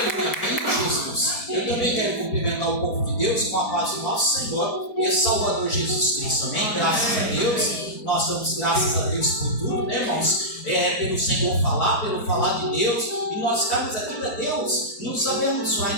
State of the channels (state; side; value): late; right; 4.3 ms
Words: amém, Jesus. Eu também quero cumprimentar o povo de Deus com a paz do nosso Senhor e Salvador Jesus Cristo, amém? Graças a Deus, nós damos graças a Deus por tudo, né, irmãos? Pelo Senhor falar, pelo falar de Deus, e nós estamos aqui para Deus nos abençoar,